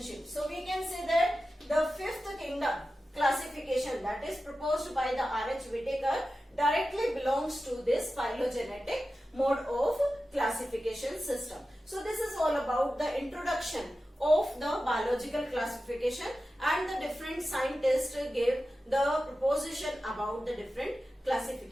So we can say that the fifth kingdom classification that is proposed by the R.H. Whittaker directly belongs to this phylogenetic mode of classification system. So this is all about the introduction of the biological classification, and the different scientists gave the proposition about the different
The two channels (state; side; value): normal; both; correlation 0.93